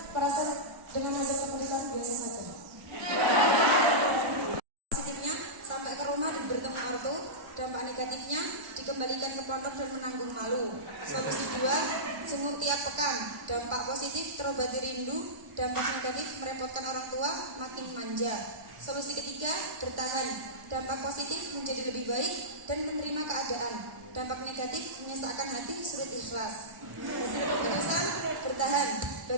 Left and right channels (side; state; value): left; late; 1.3 ms